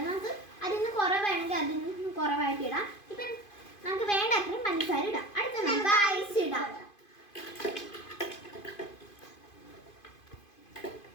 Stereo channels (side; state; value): right; late; 2.5 ms